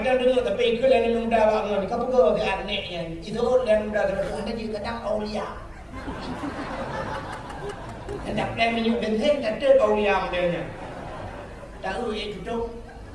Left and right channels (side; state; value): both; identical; correlation 1.00